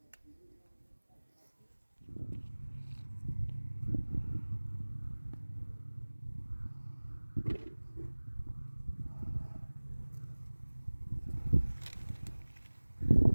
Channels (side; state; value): both; inverted; correlation -1.00